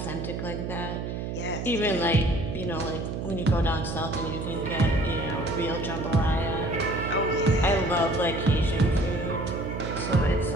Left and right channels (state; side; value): noise; right; hum, 4 dB below the sound